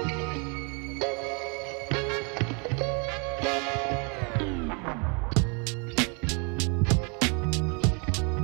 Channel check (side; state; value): left; quieter; 34.6 dB